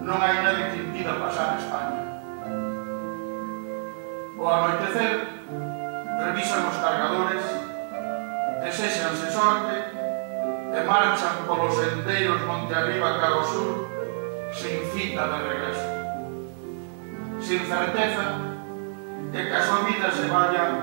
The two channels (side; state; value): left; silent; 59 dB below the other